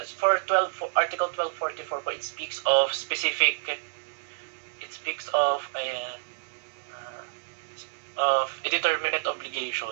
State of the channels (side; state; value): left; silent; digital silence